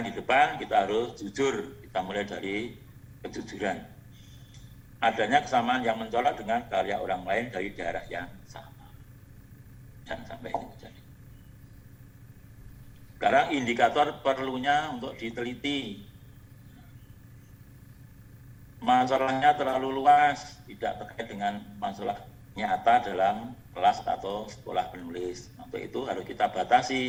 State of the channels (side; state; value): both; identical; correlation 1.00